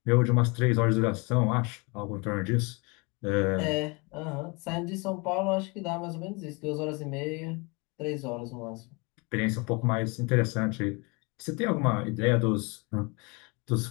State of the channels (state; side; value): quieter; right; 29.2 dB